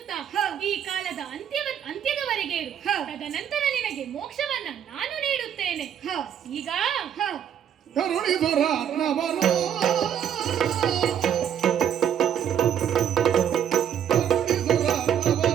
ಈ ಕಾಲದ ಅಂತ್ಯದವರೆಗೆ ಇರು. ತದನಂತರ ನಿನಗೆ ಮೋಕ್ಷವನ್ನ ನಾನು ನೀಡುತ್ತೇನೆ. ಈಗ ಕರುಣಿಸುರ ನವನೋ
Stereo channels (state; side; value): quieter; left; 9.2 dB